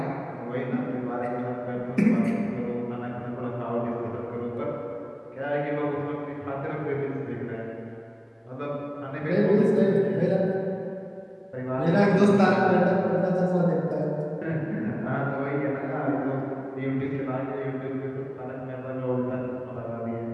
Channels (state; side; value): identical; both; correlation 1.00